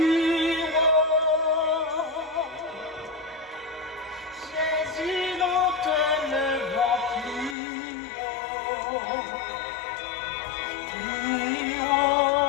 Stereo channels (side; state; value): right; drops out; at 7.6 s